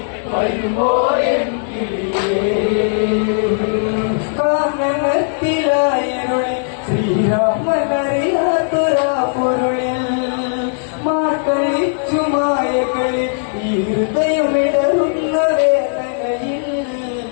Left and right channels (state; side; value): silent; right; digital silence